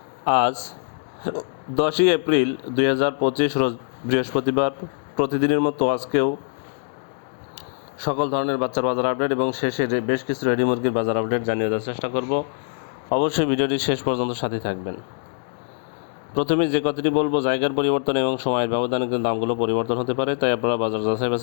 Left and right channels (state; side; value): silent; right; 63 dB below the other